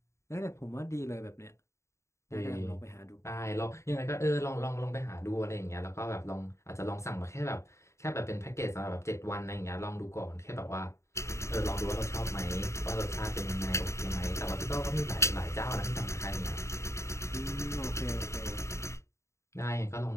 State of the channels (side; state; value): right; late; 0.14 ms